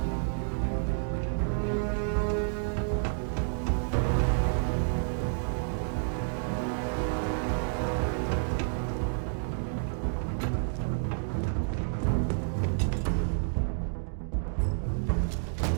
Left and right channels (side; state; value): left; silent; digital silence